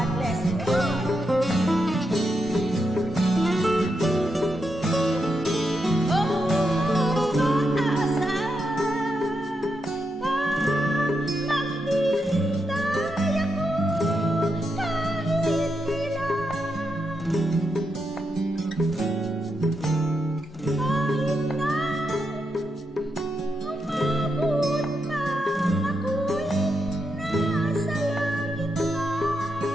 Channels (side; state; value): both; normal; correlation 0.84